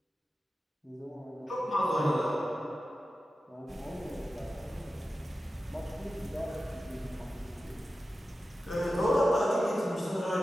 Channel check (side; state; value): both; normal; correlation 0.93